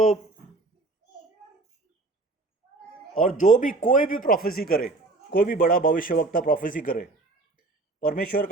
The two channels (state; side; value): quieter; left; 3.3 dB